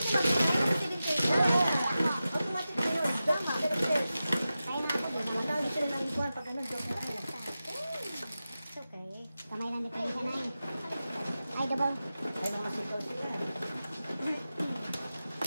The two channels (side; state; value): both; inverted; correlation -0.93